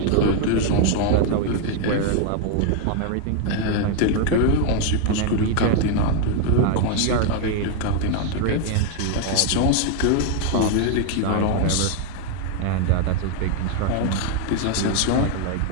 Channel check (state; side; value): different; both; correlation 0.01